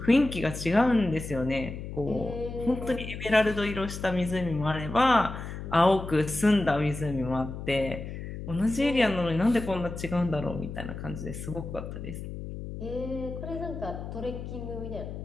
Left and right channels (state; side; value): noise; left; hum, 8 dB below the sound